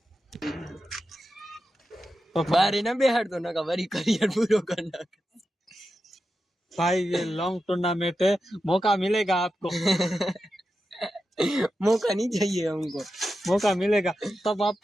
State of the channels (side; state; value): both; normal; correlation 0.90